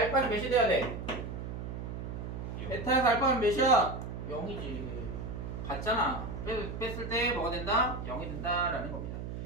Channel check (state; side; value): noise; right; hum, 6 dB below the sound